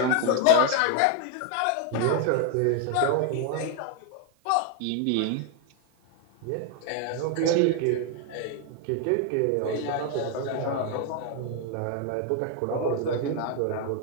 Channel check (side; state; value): both; different; correlation 0.00